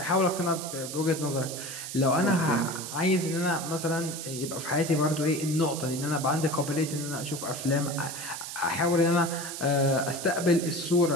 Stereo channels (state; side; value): noise; right; hiss, 8 dB below the sound